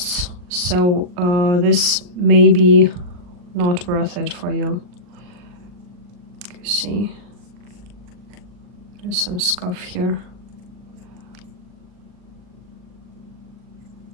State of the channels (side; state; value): left; late; 39 ms